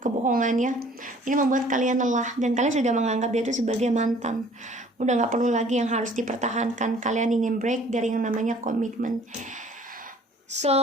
kebohongan ya. Ini membuat kalian lelah dan kalian sudah menganggap dia itu sebagai mantan, udah nggak perlu lagi yang harus dipertahankan. Kalian ingin break dari yang namanya komitmen. So,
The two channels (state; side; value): normal; both; correlation 0.54